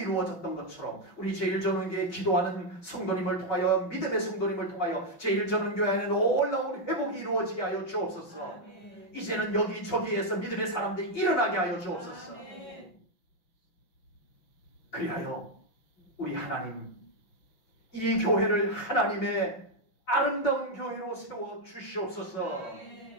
것처럼 우리 제1전원교회 기도하는 성도님을 통하여, 믿음의 성도님을 통하여 제1전원교회 안에 놀라운 회복이 이루어지게 하여 주옵소서. 아멘. 이제는 여기저기에서 믿음의 사람들이 일어나게 하여 주옵소서. 아멘. 그리하여 우리 하나님, 이 교회를 하나님의 아름다운 교회로 세워 주시옵소서.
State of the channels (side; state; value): right; late; 5.7 ms